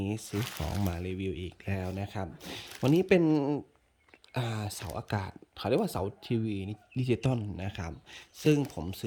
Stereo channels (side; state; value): both; identical; correlation 1.00